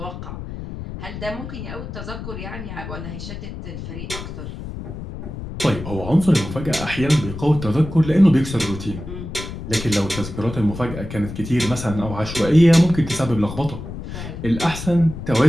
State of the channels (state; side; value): noise; left; rumble, 9 dB below the sound